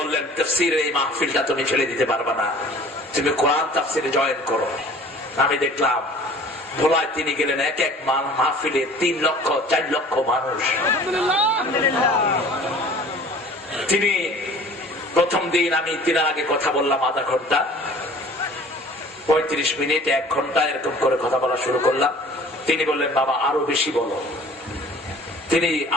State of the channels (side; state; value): both; normal; correlation 0.48